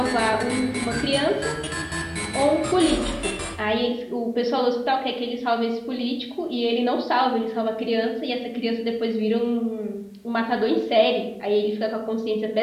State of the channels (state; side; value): identical; both; correlation 1.00